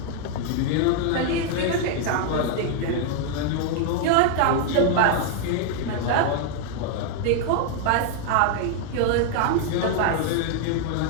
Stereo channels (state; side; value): different; both; correlation 0.00